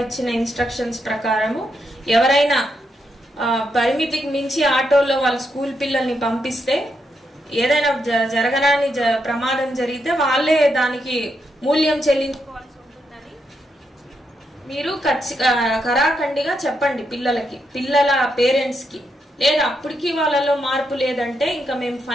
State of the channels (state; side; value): normal; both; correlation 0.81